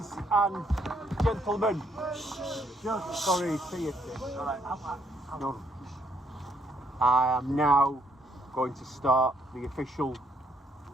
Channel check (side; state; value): both; normal; correlation 0.71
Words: and gentlemen. Sorry, see you. No. I am now going to start the official